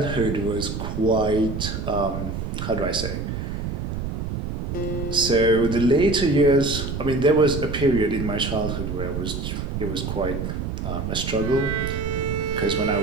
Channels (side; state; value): right; noise; rumble, 4 dB below the sound